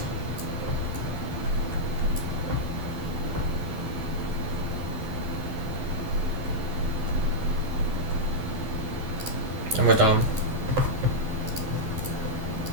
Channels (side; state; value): left; late; 11 ms